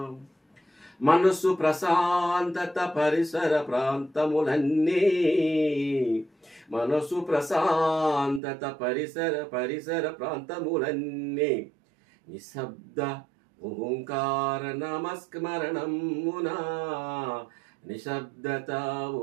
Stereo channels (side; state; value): left; drops out; at 8.4 s